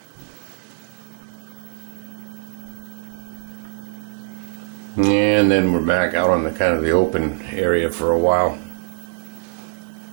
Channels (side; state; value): left; silent; 64 dB below the other